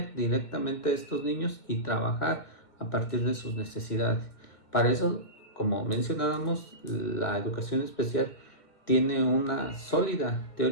directamente a estos niños y trabajar a partir de sus necesidades. Para eso, como mencionábamos, la educación especial tiene una sólida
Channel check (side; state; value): right; late; 2.1 ms